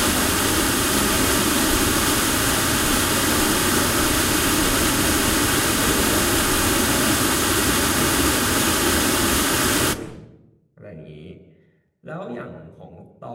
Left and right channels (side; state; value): both; identical; correlation 1.00